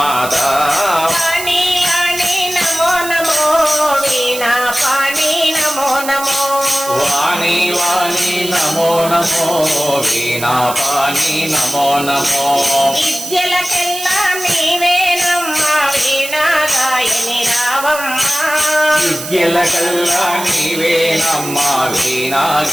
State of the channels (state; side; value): noise; right; hiss, 9 dB below the sound